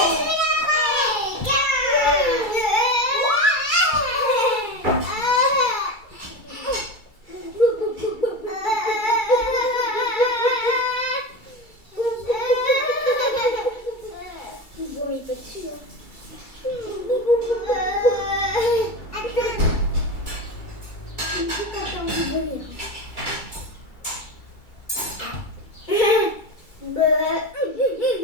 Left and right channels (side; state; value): right; late; 2.3 ms